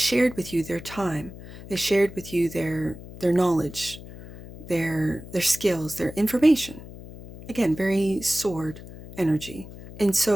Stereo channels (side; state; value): left; noise; hum, 15 dB below the sound